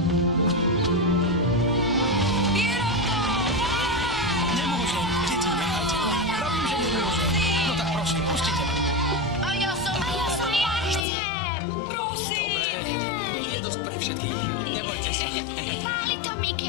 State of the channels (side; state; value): right; drops out; at 11.1 s